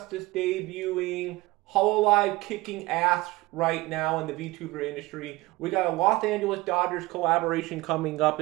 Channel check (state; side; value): quieter; left; 20.6 dB